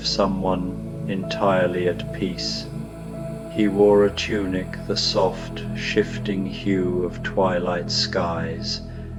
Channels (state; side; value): identical; both; correlation 1.00